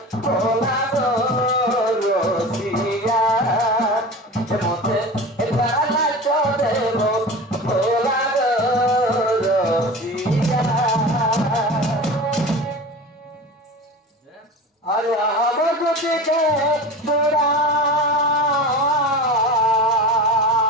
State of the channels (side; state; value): both; normal; correlation 0.32